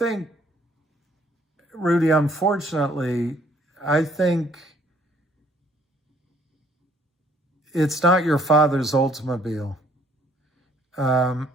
Rudy, unfortunately, I think it's not your father's Oldsmobile.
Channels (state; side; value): normal; both; correlation 0.62